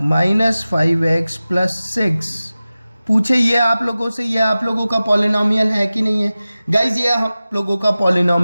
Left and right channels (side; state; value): both; inverted; correlation -0.96